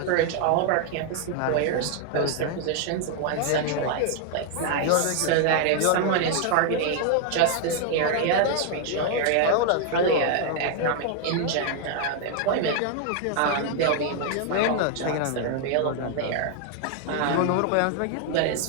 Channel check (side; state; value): both; different; correlation 0.00